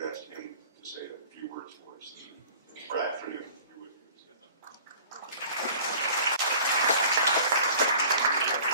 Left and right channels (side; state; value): both; inverted; correlation -0.47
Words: asked him to say a few words for us. Brad, for you.